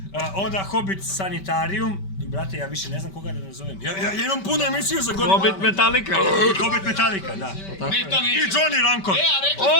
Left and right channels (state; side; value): late; right; 5.2 ms